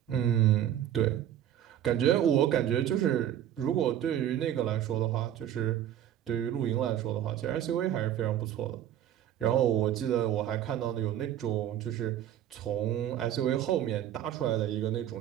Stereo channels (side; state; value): left; quieter; 11.0 dB